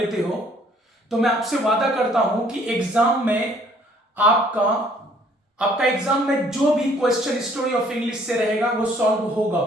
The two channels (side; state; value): both; normal; correlation 0.60